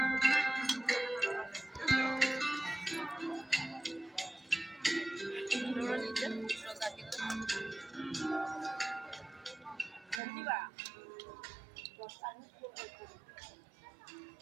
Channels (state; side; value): drops out; left; at 10.2 s